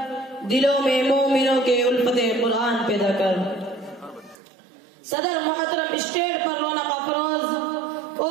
دلوں میں مومنوں کے الفت قرآن پیدا کر۔ صدر محترم اسٹیج پر رونق افروز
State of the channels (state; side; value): drops out; left; at 4.4 s